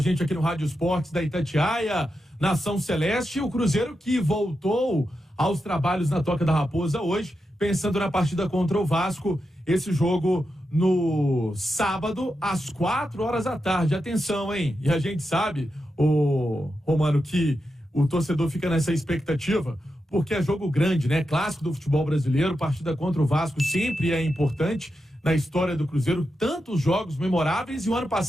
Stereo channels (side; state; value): both; normal; correlation 0.88